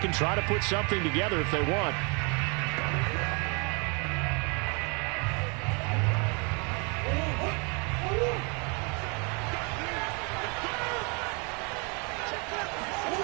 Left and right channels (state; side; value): quieter; left; 33.1 dB